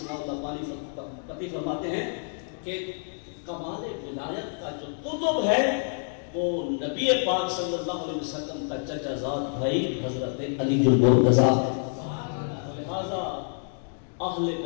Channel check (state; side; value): silent; right; 60 dB below the other